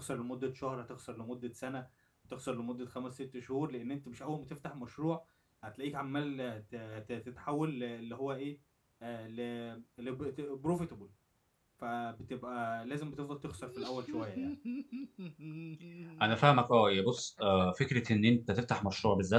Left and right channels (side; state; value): both; identical; correlation 1.00